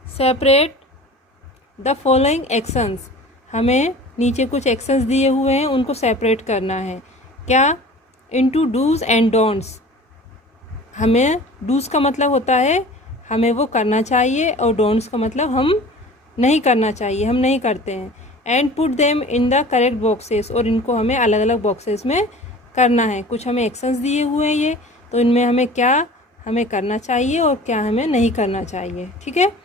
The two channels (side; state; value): both; normal; correlation 0.42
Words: सेपरेट द फॉलोइंग एक्शंस। हमें नीचे कुछ एक्शंस दिए हुए हैं, उनको सेपरेट करना है। क्या? Into dos and don'ts. हमें डूज़ का मतलब होता है हमें वो करना चाहिए, और डोंट्स का मतलब हम नहीं करना चाहिए, हम नहीं करते हैं। And put them in the correct boxes, और इनको हमें अलग अलग बॉक्सेस में करना है। कुछ हमें एक्शंस दिए हुए हैं ये, तो इनमें हमें क्या हमें करना चाहिए और क्या हमें नहीं करना चाहिए। ठीक है।